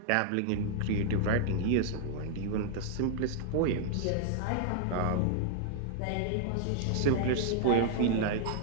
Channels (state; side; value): different; both; correlation -0.01